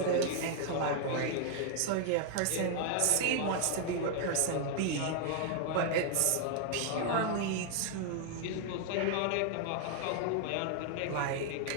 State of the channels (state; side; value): different; both; correlation 0.00